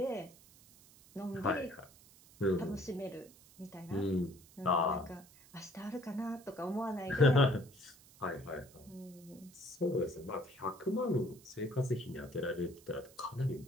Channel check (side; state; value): right; noise; hiss, 24 dB below the sound